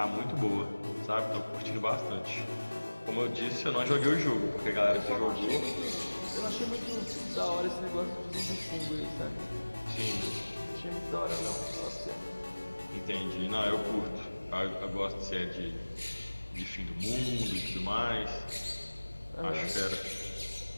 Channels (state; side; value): inverted; both; correlation -1.00